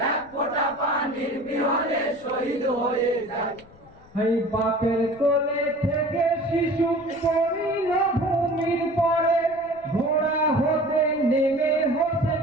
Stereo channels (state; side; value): noise; left; rumble, 26 dB below the sound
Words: এক ফোঁটা পানির বিহনে শহীদ হয়ে যায়। এই বাপের কোলে থেকে শিশু পড়িল ভূমির পরে, ঘোড়া হতে নেমে হতে